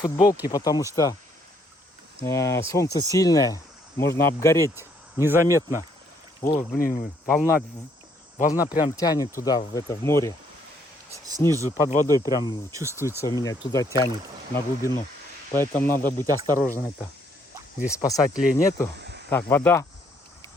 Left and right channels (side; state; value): both; normal; correlation 0.68